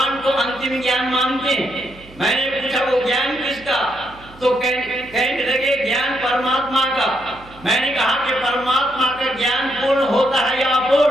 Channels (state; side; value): noise; right; hum, 22 dB below the sound